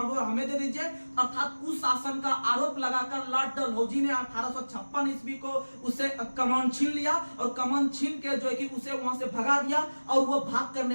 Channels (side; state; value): both; inverted; correlation -1.00